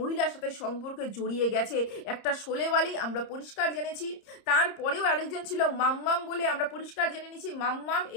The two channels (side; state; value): right; late; 30 ms